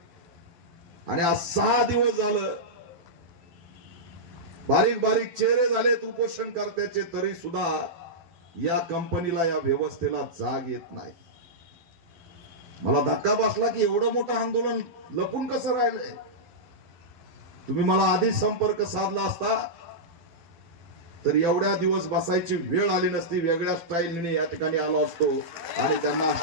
आणि आज 6 दिवस झालं. बारीक बारीक चेहरे झालेत उपोषण करत्याचे, तरी सुद्धा या कंपनीला, या व्यवस्थेला जाग येत नाही. मला धक्का बसला की एवढं मोठं आंदोलन लपून कसं राहिलंय. तुम्ही मला आधी संपर्क साधला असता तर एवढ्या दिवस बसायची वेळ आली नसती. वेगळ्या स्टाईलने या ठिकाणी आलो असतो आणि त्यांना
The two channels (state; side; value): late; left; 11 ms